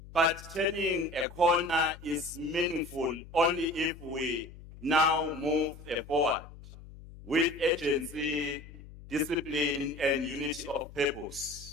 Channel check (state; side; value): noise; left; hum, 17 dB below the sound